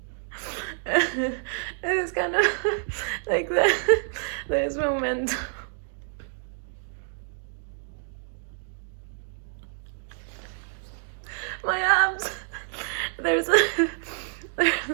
It's kind of like that. There's momentum. My abs. There's like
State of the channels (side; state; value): left; silent; digital silence